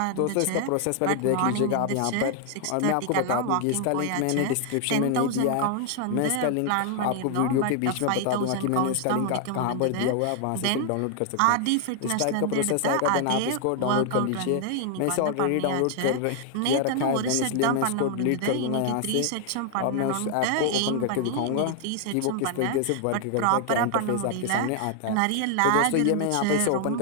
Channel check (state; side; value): different; both; correlation 0.00